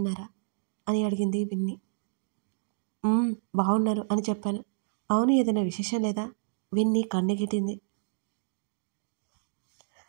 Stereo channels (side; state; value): left; silent; digital silence